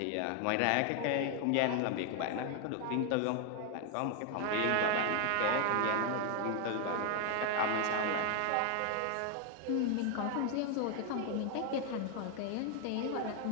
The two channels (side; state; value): both; different; correlation 0.00